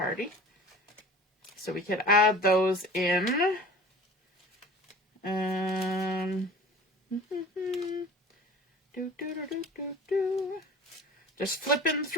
So we could add those in. Just flipping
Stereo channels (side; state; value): both; normal; correlation 0.42